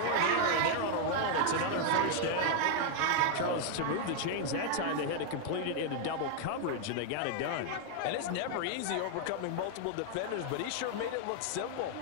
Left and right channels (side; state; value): both; different; correlation 0.00